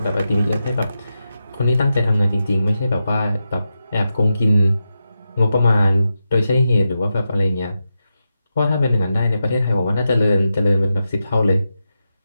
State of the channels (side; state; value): both; inverted; correlation -0.89